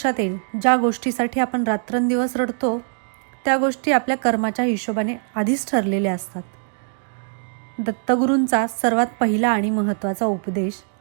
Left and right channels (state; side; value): silent; left; 64 dB below the other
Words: येईल, ज्या गोष्टीसाठी आपण रात्रंदिवस रडतो त्या गोष्टी आपल्या कर्माच्या हिशोबाने आधीच ठरलेल्या असतात. दत्तगुरूंचा सर्वात पहिला आणि महत्त्वाचा उपदेश